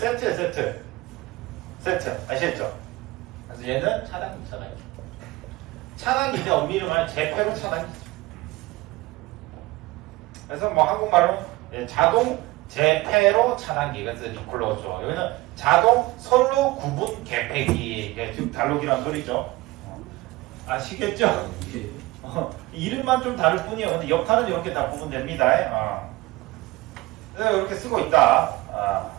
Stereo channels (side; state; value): left; quieter; 20.1 dB